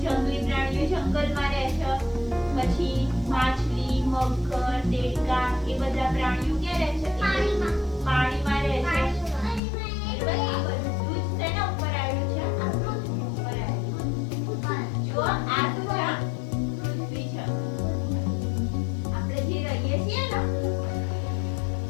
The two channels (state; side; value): drops out; right; at 9.6 s